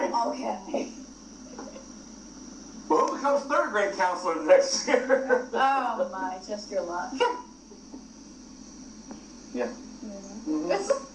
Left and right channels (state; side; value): identical; both; correlation 1.00